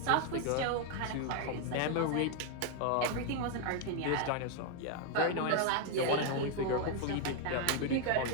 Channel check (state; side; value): different; both; correlation 0.01